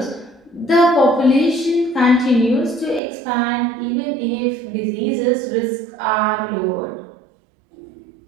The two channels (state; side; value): drops out; left; at 3.0 s